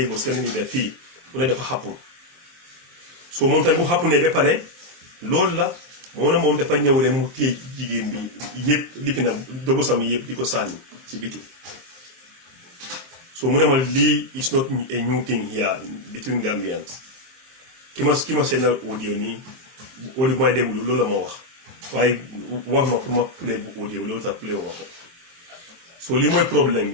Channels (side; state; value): left; late; 23 ms